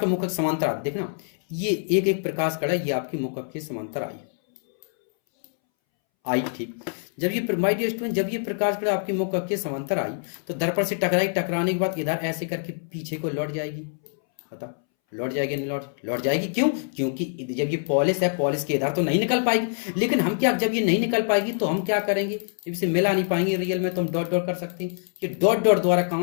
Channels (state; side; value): silent; right; 62 dB below the other